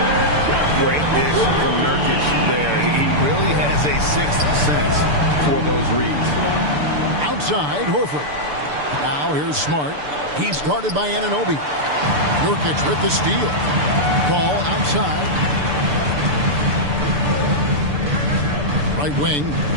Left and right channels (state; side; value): late; left; 6.8 ms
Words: Great dish from Nurkic there. He really has a sixth sense for those reads. Outside, Horford. Now here's Smart. He's guarded by Anunoby. Nurkic with the steal. Ball outside. Right wing.